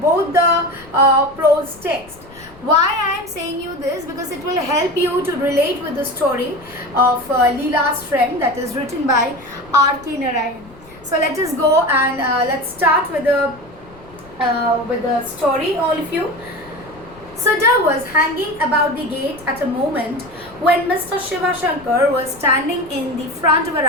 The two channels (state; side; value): noise; left; rumble, 23 dB below the sound